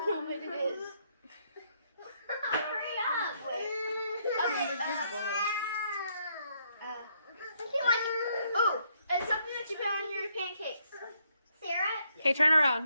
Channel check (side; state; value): both; inverted; correlation -0.72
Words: know what it is. Hurry up! Wait. Oh, it's something that you put on your pancakes. Sarah? Okay, turn